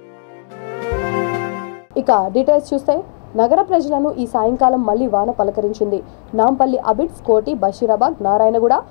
ఇక డీటెయిల్స్ చూస్తే నగర ప్రజలను ఈ సాయంకాలం మళ్లీ వాన పలకరించింది. నాంపల్లి, అబిడ్స్, కోటి, బషీరాబాద్, నారాయణగూడ,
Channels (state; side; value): silent; right; digital silence